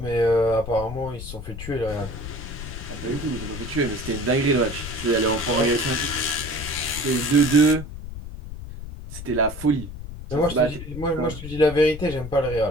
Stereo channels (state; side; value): noise; left; rumble, 10 dB below the sound